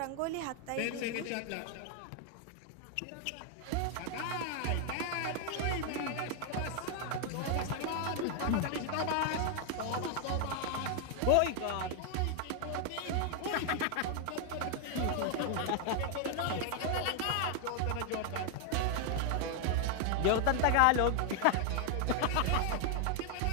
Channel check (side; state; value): both; different; correlation 0.00